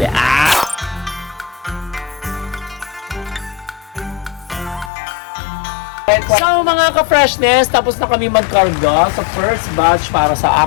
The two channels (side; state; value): right; drops out; at 4.9 s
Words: Ah! So mga ka-freshness, tapos na kami magkarga sa first batch para sa